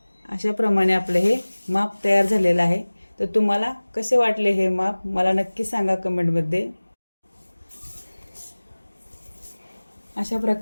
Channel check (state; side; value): inverted; both; correlation -1.00